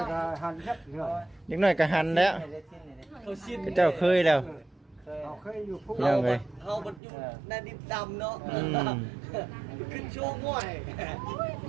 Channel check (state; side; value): drops out; left; at 7.0 s